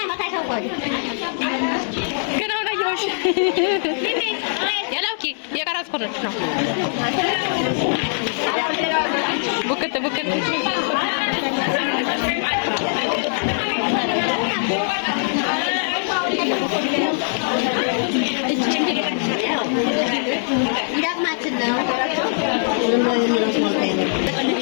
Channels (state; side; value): silent; right; 62 dB below the other